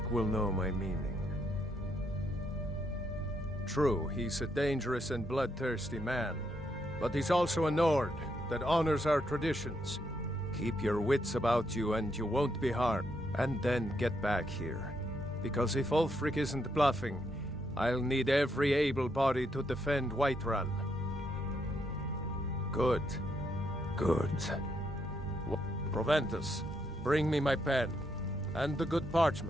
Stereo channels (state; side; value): normal; both; correlation 0.77